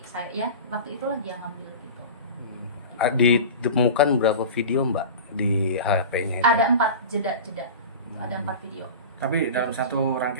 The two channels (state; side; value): inverted; both; correlation -0.32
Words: saya ya waktu itulah dia ngambil gitu. Ditemukan berapa video Mbak di HP-nya itu? Ada 4 jeda, ada 4 video. Tapi dalam satu